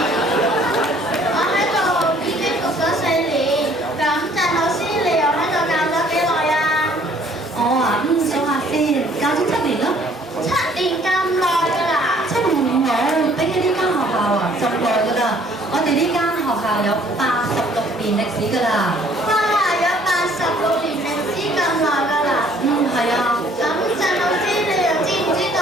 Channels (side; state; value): both; normal; correlation 0.59